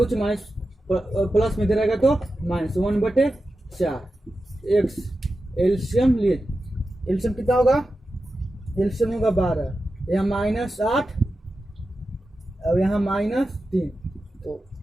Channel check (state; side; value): normal; both; correlation 0.92